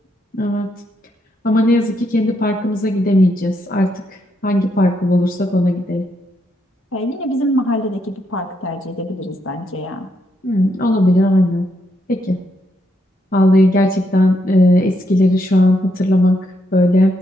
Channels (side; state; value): both; normal; correlation 0.78